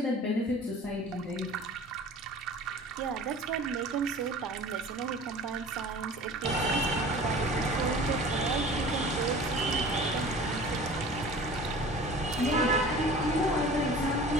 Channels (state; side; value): normal; both; correlation 0.42